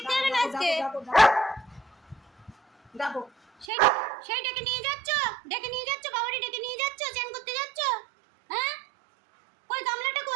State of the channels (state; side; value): drops out; left; at 3.7 s